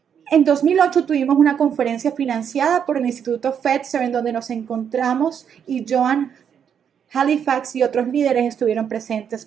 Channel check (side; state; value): left; quieter; 8.0 dB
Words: En 2008 tuvimos una conferencia financiada por el Instituto Fetzer en donde nos encontramos y Joan Halifax y otros líderes estuvieron presentes